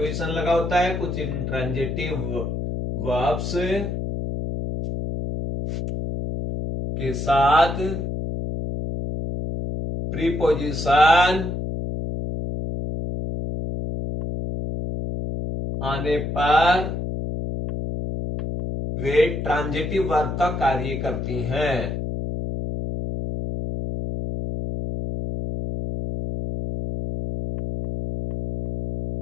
लगा होता है, कुछ इनट्रांजिटिव वर्ब्स के साथ प्रीपोजिशन आने पर वे ट्रांजिटिव वर्ब का कार्य करती हैं।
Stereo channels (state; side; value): noise; left; hum, 4 dB below the sound